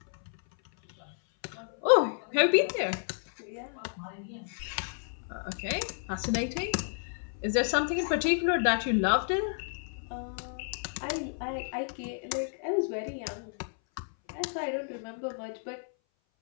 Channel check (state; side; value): silent; right; 57 dB below the other